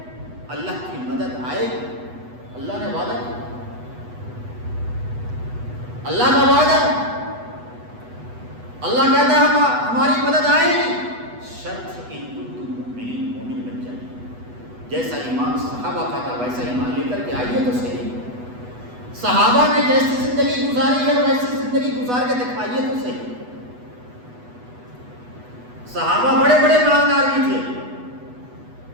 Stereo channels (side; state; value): left; late; 8.1 ms